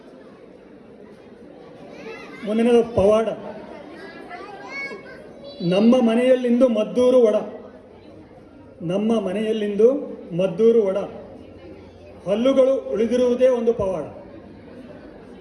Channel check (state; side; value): identical; both; correlation 1.00